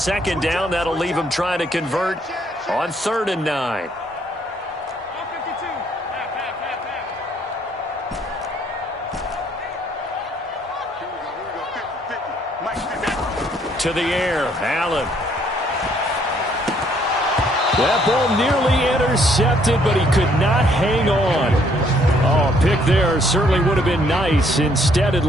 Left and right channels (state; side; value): normal; both; correlation 0.66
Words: down, that'll leave him trying to convert on 3rd and 9. To the air, Allen. That ball nearly intercepted, but he could not hang on. Oh, a pick there certainly would have been nice. Instead, at